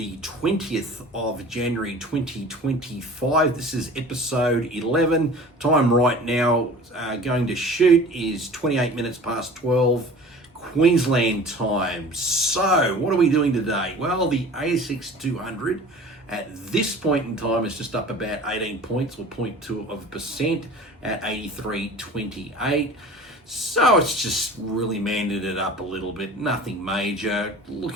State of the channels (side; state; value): both; normal; correlation 0.42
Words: 20th of January 2025. This is episode 11. Time right now going to shoot is 28 minutes past 12 Queensland time. So, what are we doing today? Well, the ASX 200 at this point in time is just up about 18 points or 0.2% at 83.28. So it's just really manded it up a little bit, nothing major.